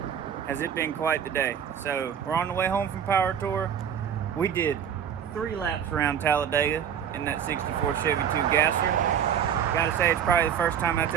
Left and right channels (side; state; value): left; quieter; 8.5 dB